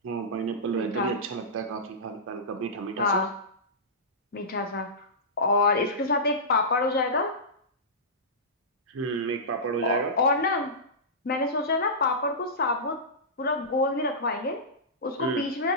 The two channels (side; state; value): both; normal; correlation -0.17